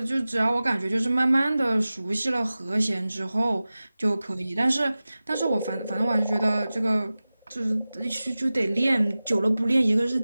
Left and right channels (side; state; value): both; inverted; correlation -0.96